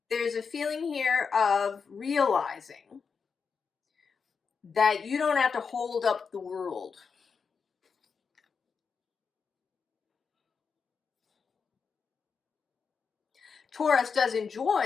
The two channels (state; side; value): quieter; right; 5.7 dB